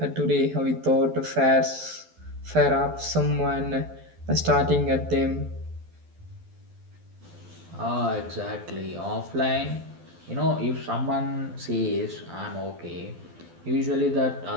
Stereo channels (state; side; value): late; left; 12 ms